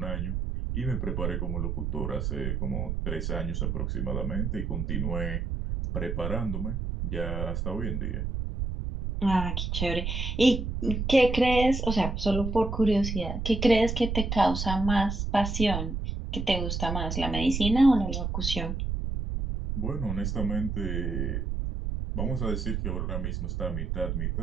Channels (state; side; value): noise; right; rumble, 2 dB below the sound